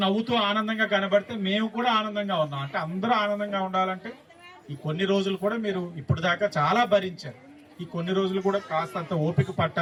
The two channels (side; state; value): both; identical; correlation 1.00